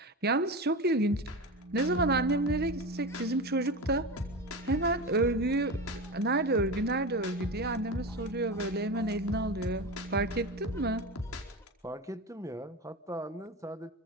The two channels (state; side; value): normal; both; correlation 0.24